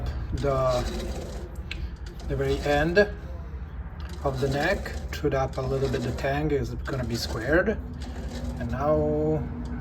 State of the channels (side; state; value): both; identical; correlation 1.00